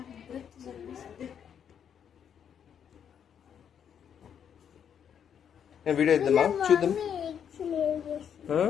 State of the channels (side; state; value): right; quieter; 8.3 dB